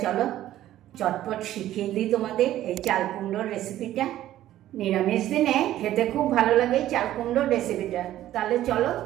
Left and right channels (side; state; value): left; quieter; 13.3 dB